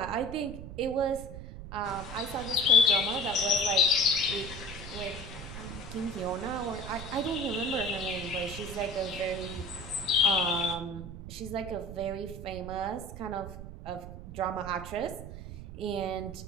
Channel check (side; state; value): right; noise; rumble, 11 dB below the sound